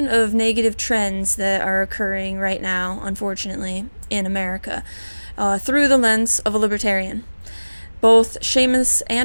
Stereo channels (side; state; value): both; inverted; correlation -1.00